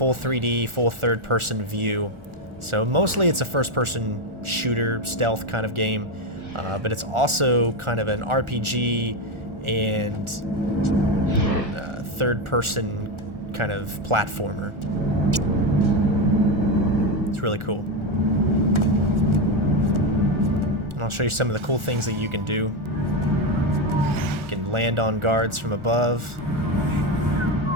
3D, full third-person view. So mostly it's a first-person shooter stealth kind of game, but it's also kind of an RPG and third-person kind of platformer. It's really cool. And I'll show you some of the cool things that you can do. You can land on guards from above.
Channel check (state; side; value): late; left; 1.4 ms